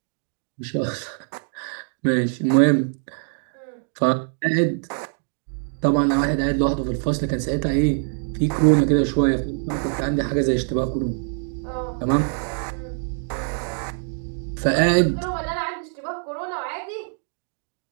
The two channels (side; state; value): left; silent; 55 dB below the other